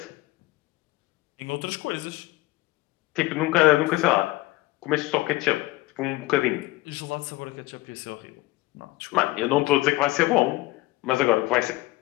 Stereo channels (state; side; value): quieter; right; 19.1 dB